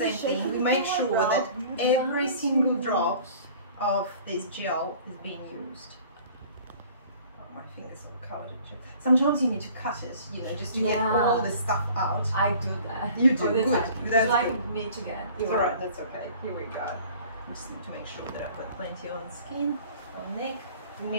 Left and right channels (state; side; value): inverted; both; correlation -0.49